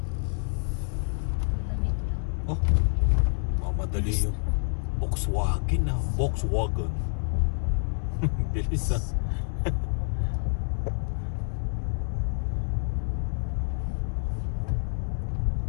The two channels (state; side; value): silent; right; digital silence